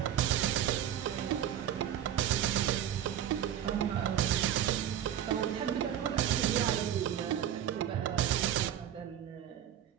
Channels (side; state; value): left; quieter; 10.4 dB